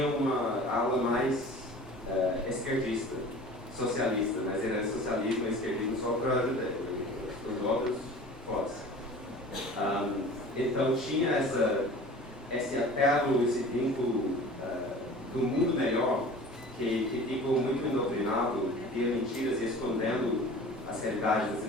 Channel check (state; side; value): normal; both; correlation 0.41